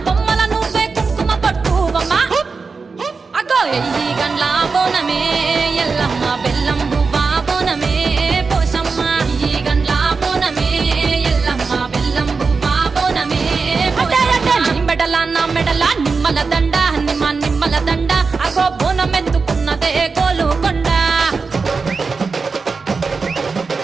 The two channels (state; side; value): quieter; left; 4.6 dB